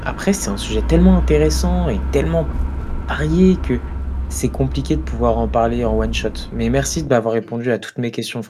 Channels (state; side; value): identical; both; correlation 1.00